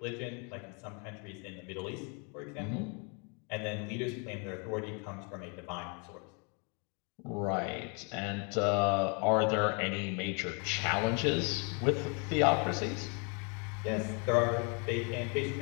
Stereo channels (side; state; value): right; quieter; 35.2 dB